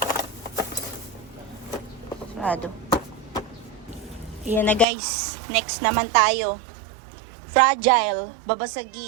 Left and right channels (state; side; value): drops out; left; at 4.9 s